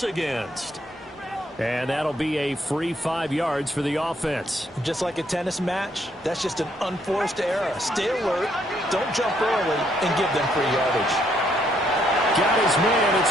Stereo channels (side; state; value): both; normal; correlation 0.71